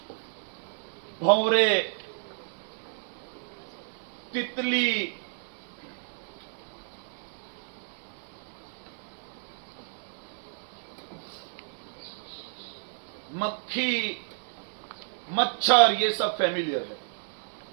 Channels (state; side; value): silent; left; digital silence